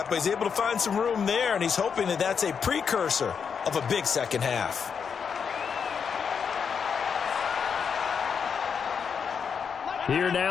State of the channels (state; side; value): quieter; right; 6.6 dB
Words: but he's able to find some room there, and he's hoping that that's a precursor of a big second half. Here